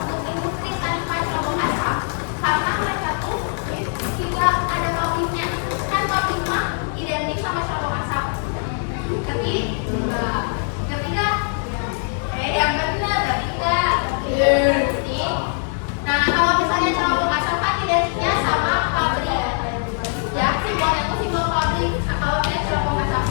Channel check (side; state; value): right; silent; 55 dB below the other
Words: industri tanpa cerobong asap? Karena mereka tuh tidak ada pabriknya. Kan pabrik mah identik sama cerobong asap. Ketiga, yang benar ketiga. Nah, kalau misalnya cerobong asap kan identiknya sama pabrik. Ya, simbolnya tuh simbol pabrik. Nah, kalau dia cerobong asap